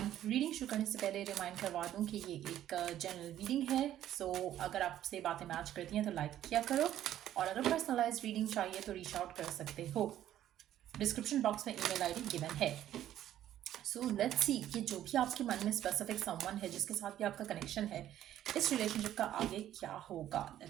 रीडिंग शुरू करने से पहले रिमाइंड करवा दूं कि ये एक जनरल रीडिंग है। सो अगर आपसे बातें मैच करती हैं तो लाइक किया करो, और अगर पर्सनलाइज रीडिंग चाहिए तो रीच आउट कर सकते हो। डिस्क्रिप्शन बॉक्स में ईमेल आईडी गिवन है। सो लेट्स सी कि जो भी आपके मन में स्पेसिफिक समवन है जिसके साथ भी आपका कनेक्शन है, इस रिलेशनशिप का आगे क्या होगा।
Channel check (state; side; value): quieter; left; 12.0 dB